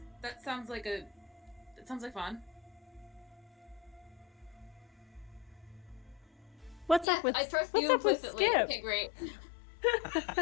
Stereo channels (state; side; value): drops out; right; at 7.1 s